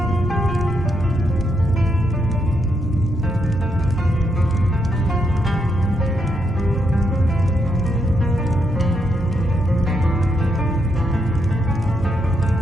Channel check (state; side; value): normal; both; correlation 0.79